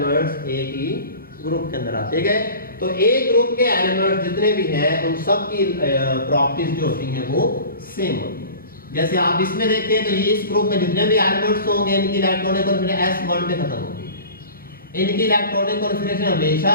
एक ही ग्रुप के अंदर आते गए। तो एक ग्रुप के एलिमेंट्स जितने भी हैं उन सब की प्रॉपर्टीज जो होती हैं वो सेम होती हैं। जैसे आप इसमें देखें तो ये इस ग्रुप में जितने भी एलिमेंट्स होंगे इनकी इलेक्ट्रॉनिक कॉन्फिगरेशन S1 पे खत्म होगी, इनकी इलेक्ट्रॉनिक कॉन्फिगरेशन हमेशा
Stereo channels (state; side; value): inverted; both; correlation -0.39